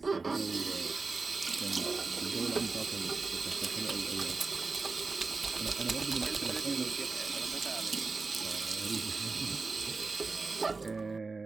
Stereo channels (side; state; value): left; quieter; 4.0 dB